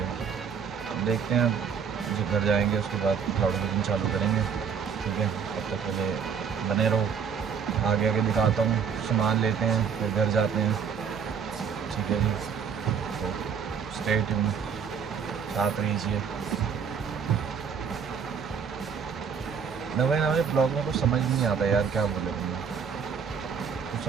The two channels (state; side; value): quieter; left; 6.8 dB